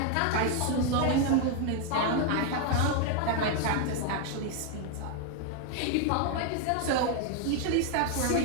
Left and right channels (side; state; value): both; different; correlation 0.01